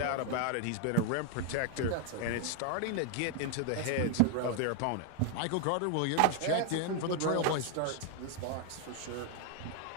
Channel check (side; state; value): both; different; correlation 0.00